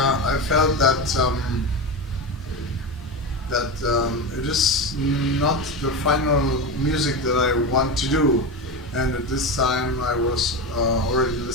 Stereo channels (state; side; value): normal; both; correlation 0.20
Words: felt that it is not the final music that I want to do. And at this time I was already